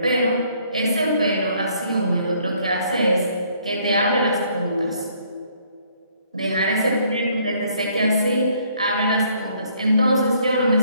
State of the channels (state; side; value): inverted; both; correlation -0.65